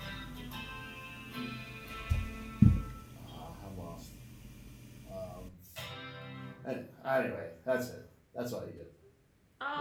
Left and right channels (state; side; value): identical; both; correlation 1.00